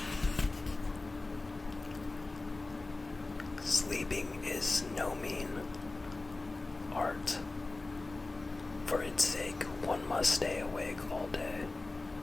Sleeping is no mean art. For its sake, one must stay awake all day.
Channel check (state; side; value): quieter; right; 3.2 dB